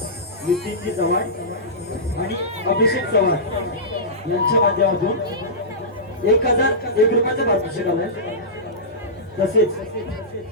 आणि अभिषेक चव्हाण यांच्या माध्यमातून 1001 रुपयाचा पारितोषिक आलाय. तसेच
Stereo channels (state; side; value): normal; both; correlation -0.17